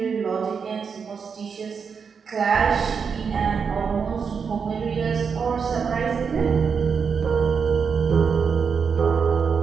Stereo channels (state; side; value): quieter; left; 6.1 dB